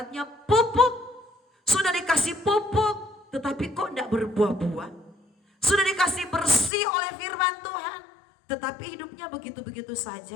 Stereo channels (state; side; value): drops out; right; at 6.7 s